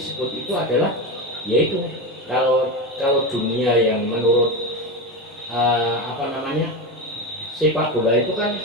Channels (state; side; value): normal; both; correlation 0.19